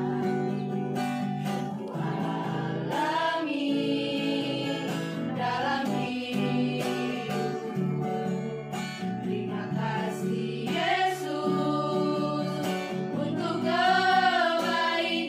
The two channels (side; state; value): both; identical; correlation 1.00